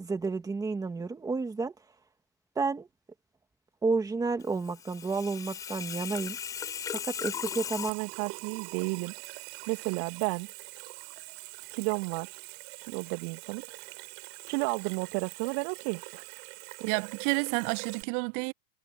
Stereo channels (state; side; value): drops out; left; at 7.9 s